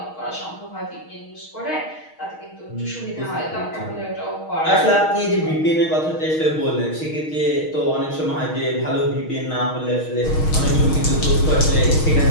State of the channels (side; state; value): right; late; 6.4 ms